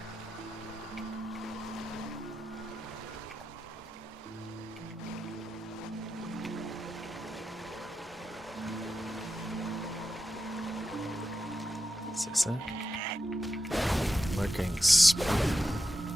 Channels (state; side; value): normal; both; correlation 0.89